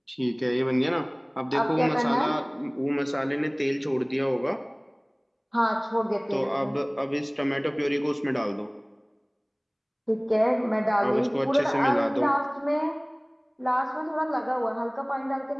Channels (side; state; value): both; identical; correlation 1.00